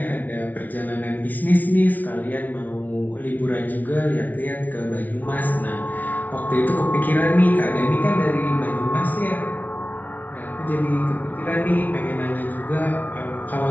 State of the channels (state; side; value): late; right; 0.078 ms